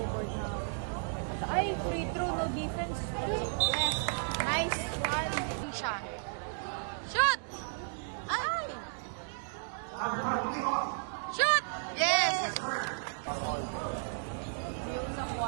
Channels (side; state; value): left; silent; digital silence